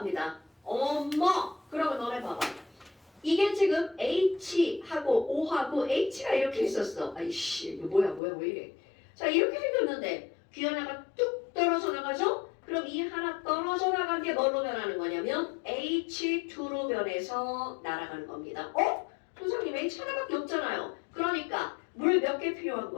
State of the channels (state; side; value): drops out; right; at 8.2 s